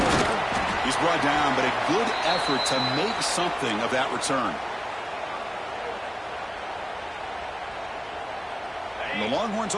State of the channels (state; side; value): identical; both; correlation 1.00